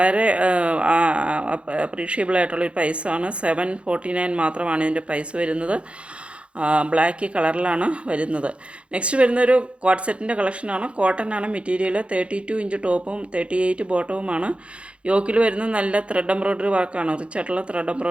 അപ്രീഷിയബിൾ ആയിട്ടുള്ളൊരു പ്രൈസാണ്. 749 മാത്രമാണ് ഇതിൻ്റെ പ്രൈസ് വരുന്നത്. ബ്ലാക്ക് കളറിലാണ് വരുന്നത്. നെക്സ്റ്റ് വരുന്നൊരു കോട്ട് സെറ്റിൻ്റെ കളക്ഷനാണ്. കോട്ടൺ ആണ് മെറ്റീരിയൽ. 32 ഇഞ്ച് ടോപ്പും 38 ബോട്ടവുമാണ്. യോക്കിൽ വരുന്നത് നല്ല ത്രെഡ് എംബ്രോയ്ഡറി വർക്കാണ്, റിച്ചായിട്ടുള്ള ത്രെഡ്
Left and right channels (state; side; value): late; left; 0.059 ms